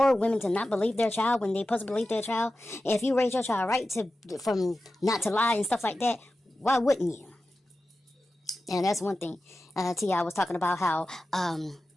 women to not believe their child when they supposed to believe their child, if you raise your child right from not to lie and stuff like that, why wouldn't you? And that's one thing. T.I. was talking about how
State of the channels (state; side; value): normal; both; correlation 0.93